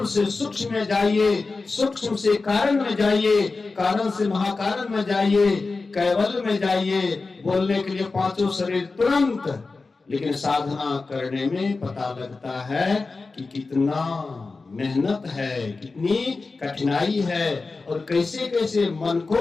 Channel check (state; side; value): quieter; right; 3.9 dB